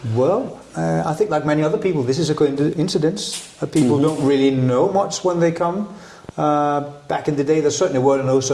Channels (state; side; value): identical; both; correlation 1.00